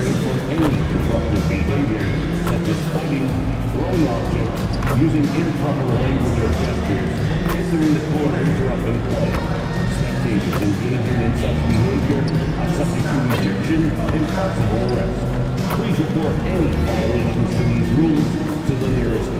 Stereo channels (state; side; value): identical; both; correlation 1.00